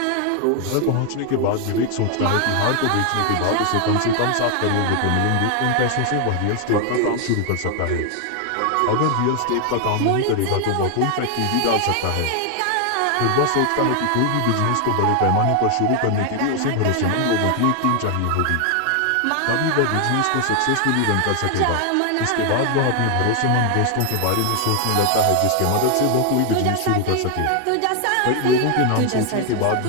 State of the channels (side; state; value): both; different; correlation 0.00